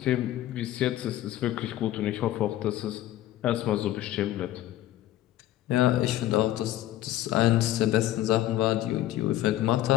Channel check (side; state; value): right; quieter; 14.1 dB